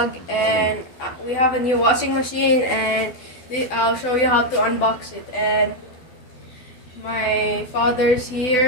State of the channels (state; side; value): late; right; 12 ms